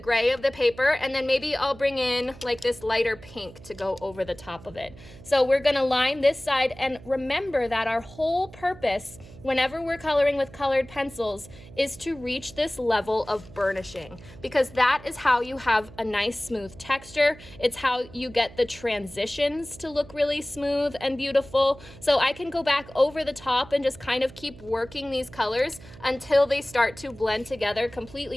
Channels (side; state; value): right; noise; hum, 19 dB below the sound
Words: of the paper, and then maybe I'll bring in like this lighter pink to go over the top of it. So we're gonna line this side, and remember that our whole purpose whenever we're coloring with colored pencils is to reach this level of burnishing, because that is how you have a nice smooth texture. It's how you get the transitions to look really smooth and beautiful. So I can go back over the top and just kind of keep working these colors until they start to blend together